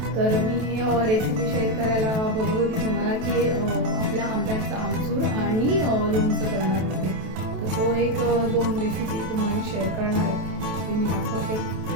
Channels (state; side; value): late; left; 27 ms